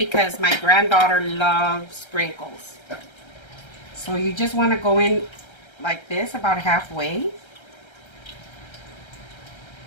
my granddaughter loves sprinkles. So you just want to go in like this, about halfway.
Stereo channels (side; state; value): right; late; 1.3 ms